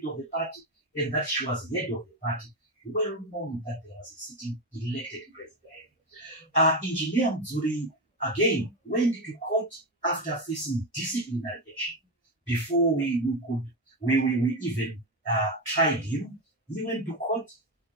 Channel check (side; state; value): both; normal; correlation 0.14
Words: of the party and that she was head of the party, well known that there was a sitting elected president. Engineer Mudzuri again went to court after facing disciplinary action. Before we even tried him, he went to court